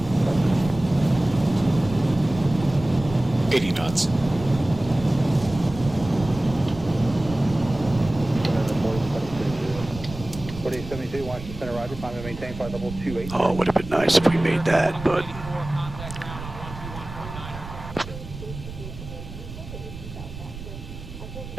Knots. Washington Center, Roger. Climb and maintain flight level 28. Oh, it would have been nice if we made that, but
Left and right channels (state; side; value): noise; right; rumble, 12 dB below the sound